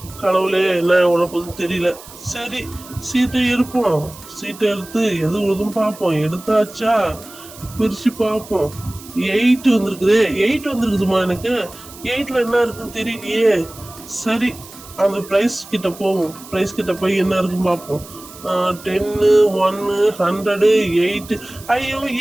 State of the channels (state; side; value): noise; right; hiss, 18 dB below the sound